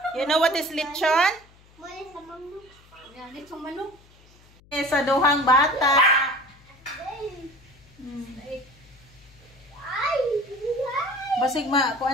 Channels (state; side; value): noise; left; hum, 27 dB below the sound